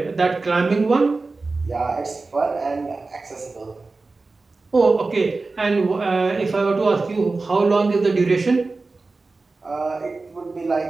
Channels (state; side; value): quieter; left; 3.7 dB